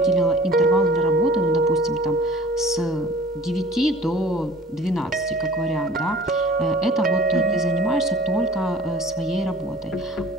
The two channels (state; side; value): normal; both; correlation 0.46